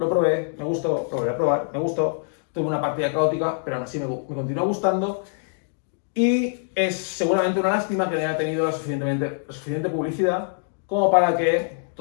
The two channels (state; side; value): silent; right; 61 dB below the other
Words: probé, me gustó, lo volví a probar, me gustó. Tuve una partida caótica, pero aún así me continúa gustando. Y es seguramente una lástima que no haya tenido la suficiente publicidad como para que